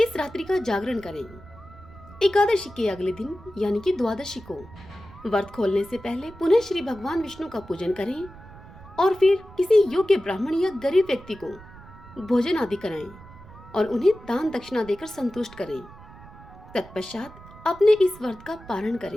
रात्रि का जागरण करें। एकादशी के अगले दिन यानी कि द्वादशी को व्रत खोलने से पहले पुनः श्री भगवान विष्णु का पूजन करें और फिर किसी योग्य ब्राह्मण या गरीब व्यक्ति को भोजन आदि कराएं और उन्हें दान दक्षिणा देकर संतुष्ट करें। तत्पश्चात अपने इस व्रत का पारण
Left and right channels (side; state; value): right; noise; rumble, 19 dB below the sound